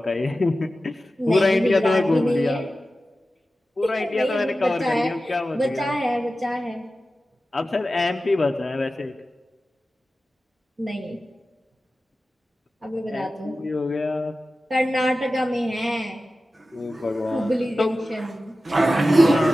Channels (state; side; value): normal; both; correlation 0.94